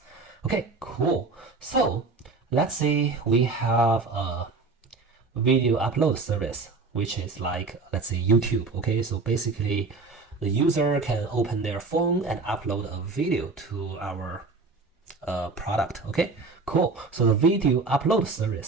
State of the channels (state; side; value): quieter; left; 4.0 dB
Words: Okay, cool. So let's say we have a video upload service, which is like, let's say YouTube, okay? So basically the user can open their phone and upload a video to our product, okay? Cool. So the video upload